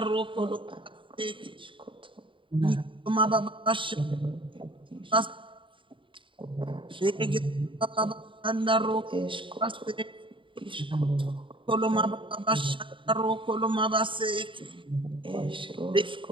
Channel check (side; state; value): left; late; 0.24 ms